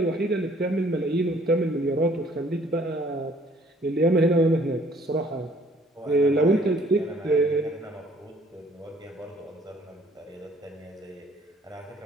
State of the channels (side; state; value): both; normal; correlation 0.59